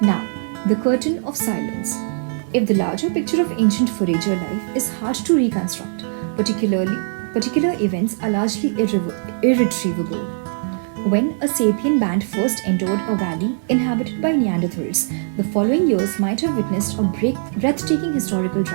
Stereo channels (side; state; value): left; silent; 59 dB below the other